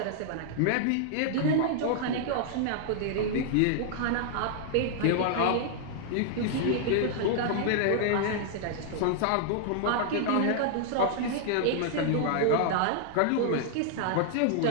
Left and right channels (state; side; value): different; both; correlation -0.01